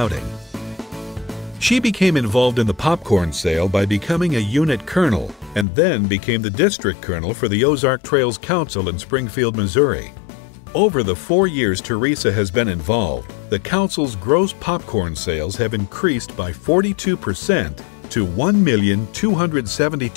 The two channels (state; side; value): drops out; right; at 5.7 s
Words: She became involved in the popcorn sale by becoming a unit colonel and then became the district colonel for the Ozark Trails Council in Springfield, Missouri. Over the 4 years Teresa has been involved, the council's gross popcorn sales have increased by 42% to